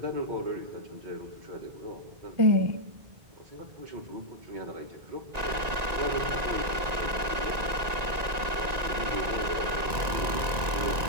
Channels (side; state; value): left; late; 1.9 ms